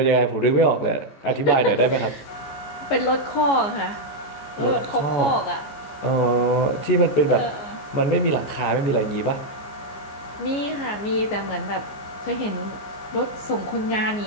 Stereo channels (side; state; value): right; late; 14 ms